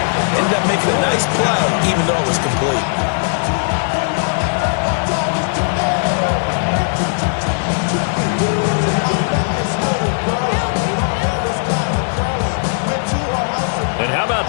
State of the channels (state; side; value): silent; right; 63 dB below the other